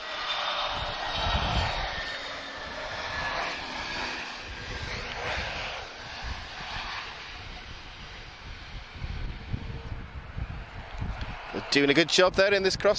Doing a good job there in this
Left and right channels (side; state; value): both; identical; correlation 1.00